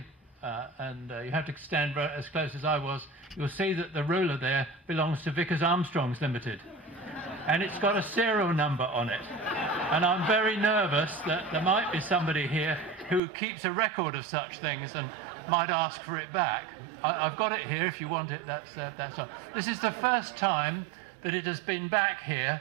and you have to stand as close as I was, you'll see that the ruler there belongs to Vickers Armstrongs Limited, and it's got a serial number on it. And I'm very nervous that there might be somebody here who keeps a record of such things and might ask for it back. I've got it here if you want it. That's all. This is the first time that it has been back here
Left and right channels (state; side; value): drops out; left; at 13.2 s